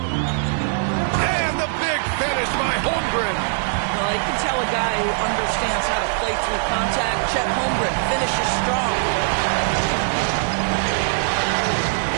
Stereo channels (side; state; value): left; silent; 61 dB below the other